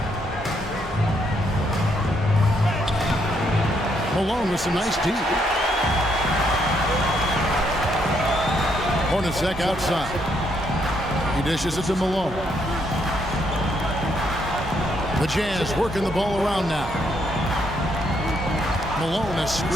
Malone with some nice deep. Hornacek outside. He dishes it to Malone. The Jazz working the ball around now. Malone, a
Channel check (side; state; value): both; normal; correlation 0.74